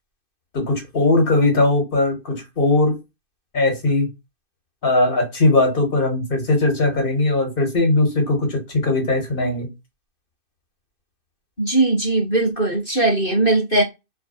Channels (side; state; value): right; late; 2.6 ms